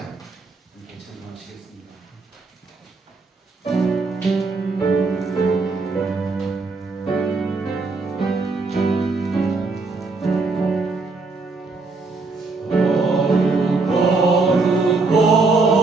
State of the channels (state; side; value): quieter; left; 3.8 dB